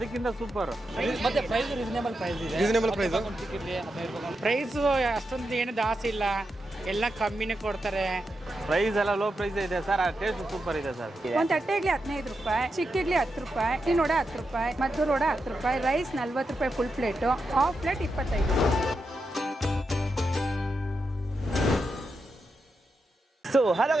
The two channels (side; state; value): both; normal; correlation 0.87